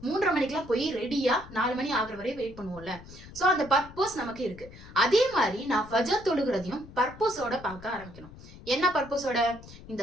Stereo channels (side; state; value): left; noise; rumble, 17 dB below the sound